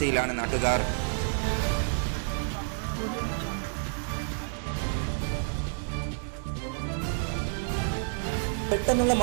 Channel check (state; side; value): silent; left; digital silence